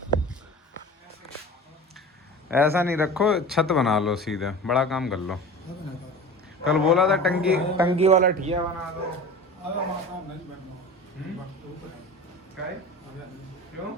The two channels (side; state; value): both; normal; correlation 0.35